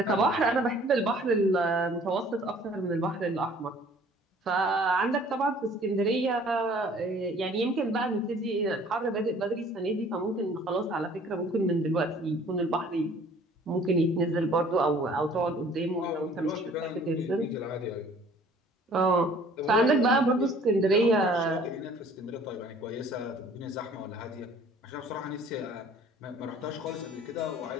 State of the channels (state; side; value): normal; both; correlation 0.53